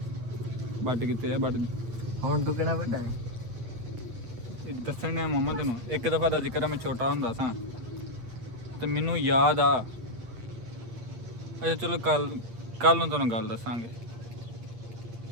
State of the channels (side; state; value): left; late; 8.6 ms